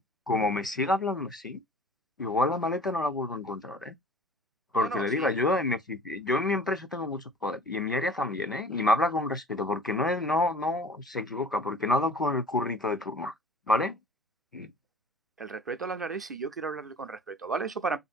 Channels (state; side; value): normal; both; correlation 0.46